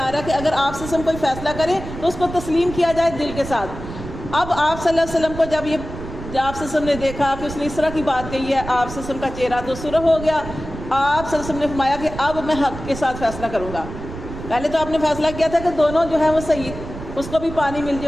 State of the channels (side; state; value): right; noise; rumble, 10 dB below the sound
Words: رہا ہے کہ اگر آپ سے کوئی فیصلہ کرے تو اس کو تسلیم کیا جائے دل کے ساتھ۔ اب آپ صلی اللہ علیہ وسلم کو جب آپ صلی اللہ علیہ وسلم نے دیکھا کہ اس نے اس طرح کی بات کہی ہے، آپ صلی اللہ علیہ وسلم کا چہرہ تو سرخ ہو گیا۔ آپ صلی اللہ علیہ وسلم نے فرمایا کہ اب میں حق کے ساتھ فیصلہ کروں گا۔ پہلے تو آپ نے فیصلہ کیا تھا کہ دونوں جو ہیں وہ صحیح، اس کو بھی پانی مل